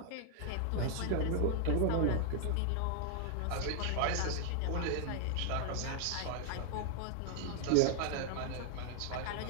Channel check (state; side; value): different; both; correlation 0.00